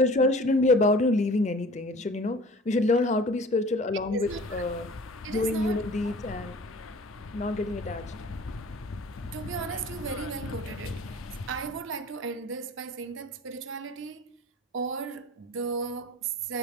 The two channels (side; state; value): both; normal; correlation 0.44